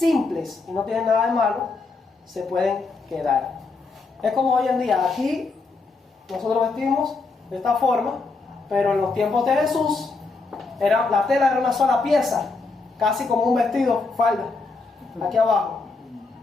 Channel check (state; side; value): quieter; right; 4.0 dB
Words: y no tienen nada de malo, se pueden quedar. Es como hoy en día, aquí nosotros vestimos de esta forma, pero en los tiempos de Jesús la tela era una sola pieza, casi como un vestido, falda, aquí abajo.